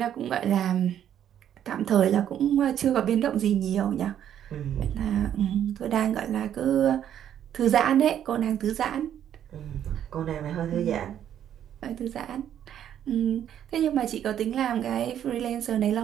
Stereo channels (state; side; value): quieter; left; 10.1 dB